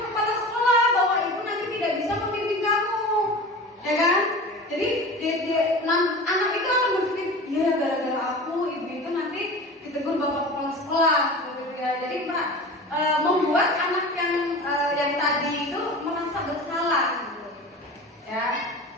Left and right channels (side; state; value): both; normal; correlation 0.35